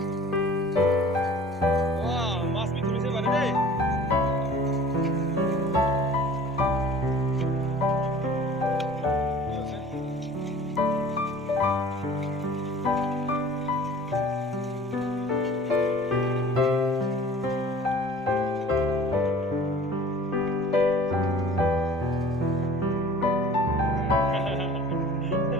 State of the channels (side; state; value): both; normal; correlation 0.46